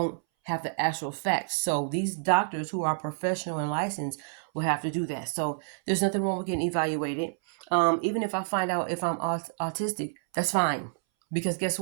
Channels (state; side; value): silent; left; 59 dB below the other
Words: have the actual facts. So these doctors who are professional and licensed will have to do that. So there's nothing wrong with getting evaluated. Even if I find out if I'm autistic, that's fine. Because guess